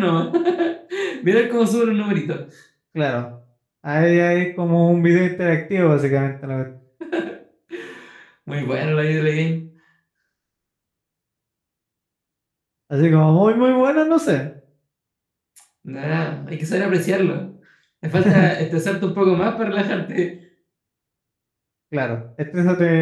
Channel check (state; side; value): identical; both; correlation 1.00